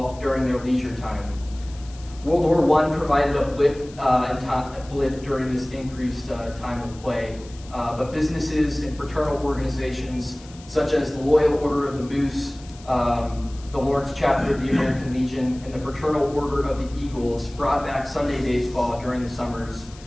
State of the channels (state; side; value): noise; left; hiss, 22 dB below the sound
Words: during their leisure time. World War I provided a blip during this increased time of play, but businesses and fraternal organizations such as the Loyal Order of the Moose, the Lawrence chapter of the American Legion, and the Fraternal Order of the Eagles brought back Sunday baseball during the summers